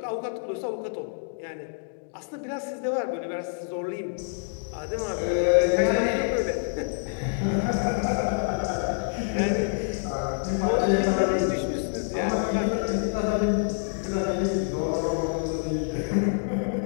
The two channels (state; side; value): silent; right; digital silence